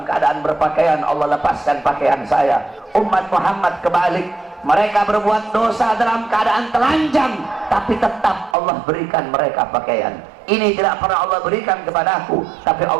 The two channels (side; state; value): left; drops out; at 8.6 s